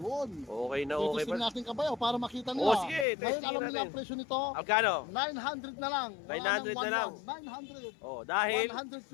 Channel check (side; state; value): right; drops out; at 3.1 s